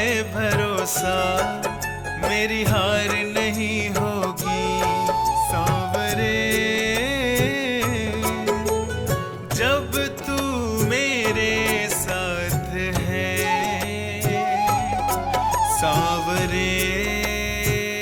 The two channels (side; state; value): both; identical; correlation 1.00